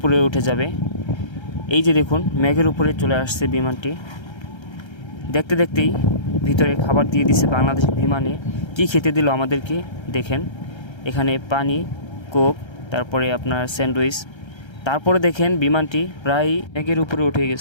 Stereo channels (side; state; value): right; late; 1.3 ms